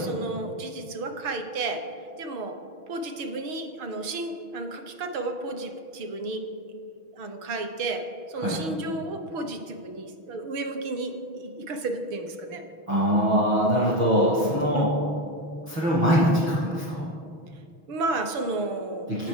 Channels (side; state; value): left; late; 6.2 ms